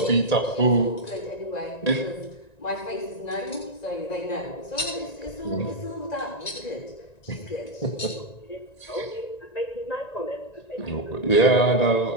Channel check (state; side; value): late; right; 1.9 ms